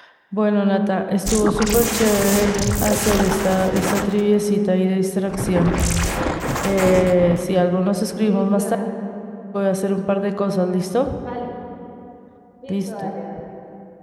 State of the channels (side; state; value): both; identical; correlation 1.00